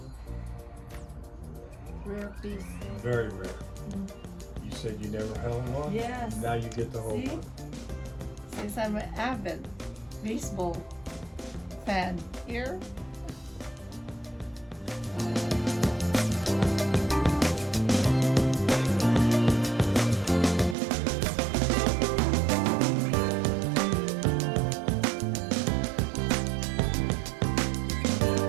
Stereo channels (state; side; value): drops out; left; at 20.8 s